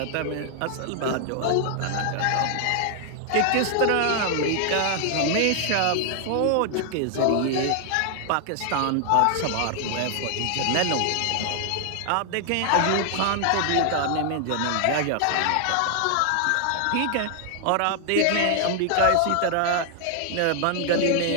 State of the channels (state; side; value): different; both; correlation 0.00